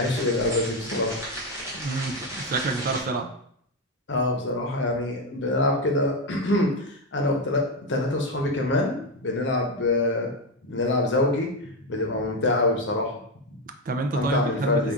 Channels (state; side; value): normal; both; correlation 0.09